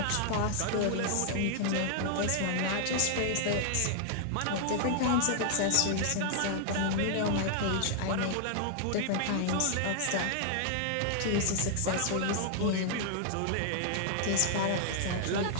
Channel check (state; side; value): different; both; correlation 0.00